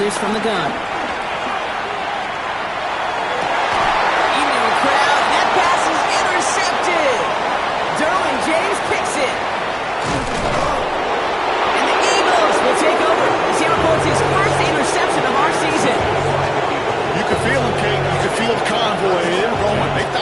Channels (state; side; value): identical; both; correlation 1.00